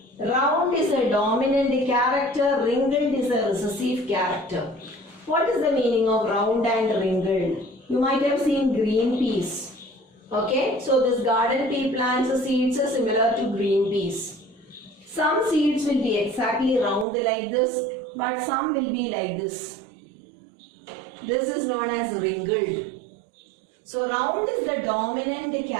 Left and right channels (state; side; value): drops out; left; at 17.1 s